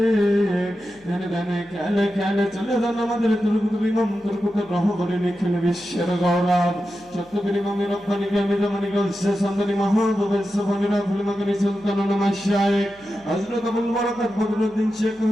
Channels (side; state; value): left; noise; hum, 29 dB below the sound